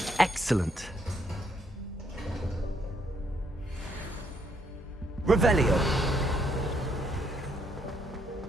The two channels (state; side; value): normal; both; correlation 0.73